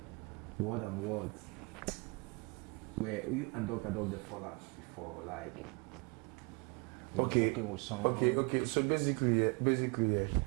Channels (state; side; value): quieter; left; 31.4 dB